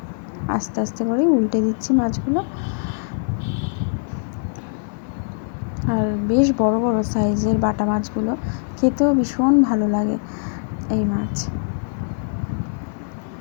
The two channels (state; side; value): silent; right; 57 dB below the other